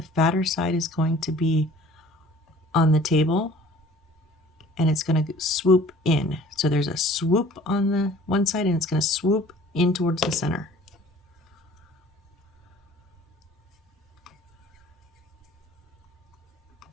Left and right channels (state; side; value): normal; both; correlation 0.50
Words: fatter side is going to be on the table, and it's going to swoop in. So there's a swoop on the one side, and it's going to swoop in towards the center.